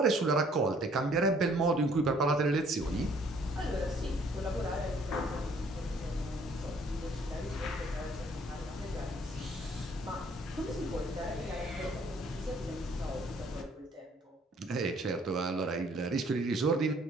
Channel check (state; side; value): normal; both; correlation 0.60